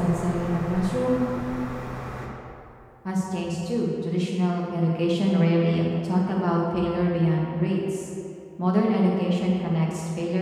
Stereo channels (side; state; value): both; identical; correlation 1.00